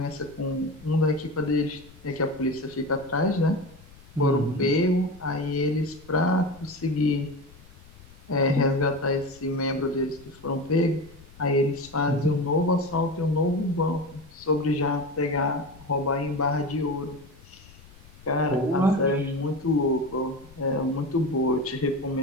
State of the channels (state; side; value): noise; left; rumble, 22 dB below the sound